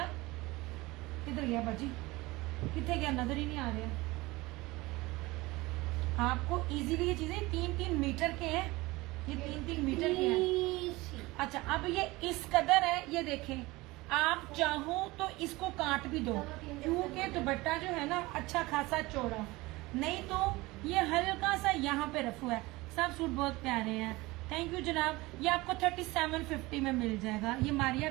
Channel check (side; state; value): left; quieter; 21.2 dB